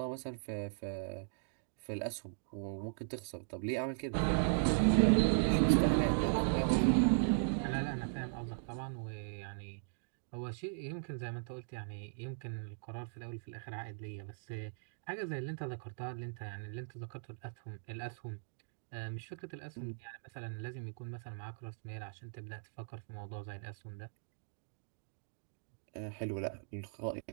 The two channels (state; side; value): silent; left; digital silence